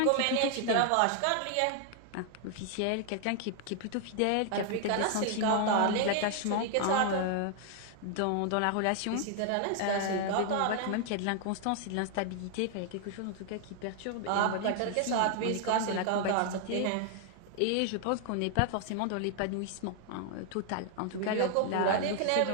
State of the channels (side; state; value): both; different; correlation 0.00